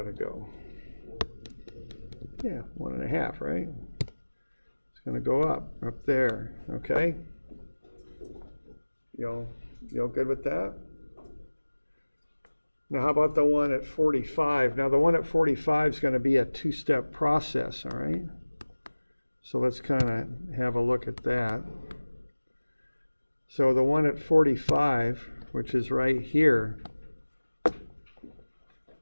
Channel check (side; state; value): both; inverted; correlation -1.00